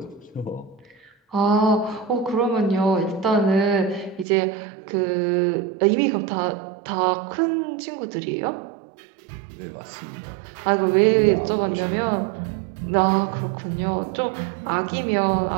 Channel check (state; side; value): drops out; left; at 4.2 s